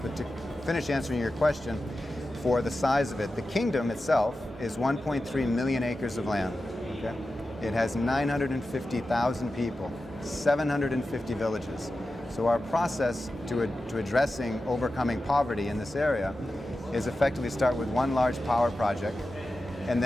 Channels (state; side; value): normal; both; correlation 0.93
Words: to finish answering your question, for the size of it, the kingdom itself is 1.3 million acres of land. Okay? It has 950,000 people, 750 villages. So our process to addressing overcoming poverty in this area is effectively start with one large power project and